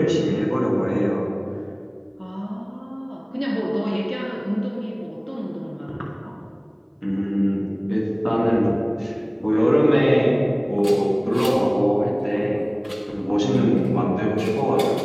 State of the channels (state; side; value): identical; both; correlation 1.00